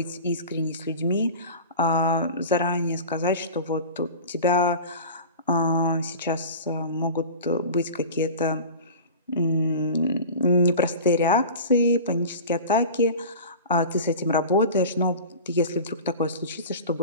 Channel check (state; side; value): inverted; both; correlation -0.35